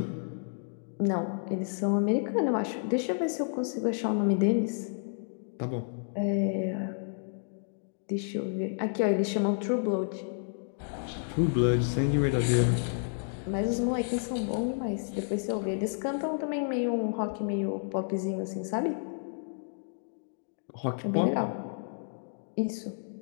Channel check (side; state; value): right; silent; digital silence